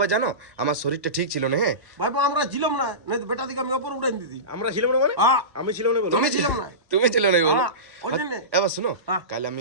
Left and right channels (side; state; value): left; late; 1.2 ms